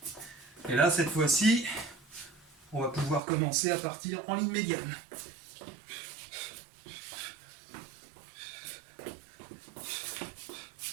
Et là, cette fois-ci, on va pouvoir commencer à partir en ligne médiane.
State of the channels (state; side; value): drops out; left; at 3.2 s